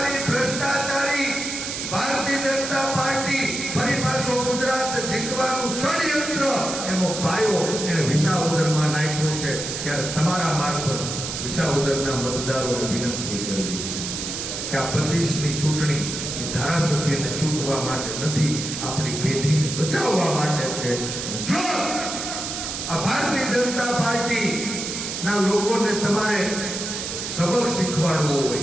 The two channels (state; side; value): noise; right; hiss, 5 dB below the sound